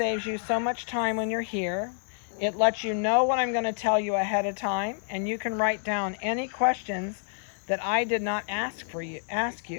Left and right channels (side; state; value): right; silent; digital silence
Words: you so much time when you're here. It lets you know what I'm going to tell you ahead of time, and you can write down any questions that I did not explain